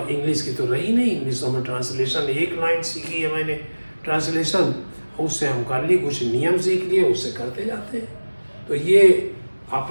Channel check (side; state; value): both; inverted; correlation -1.00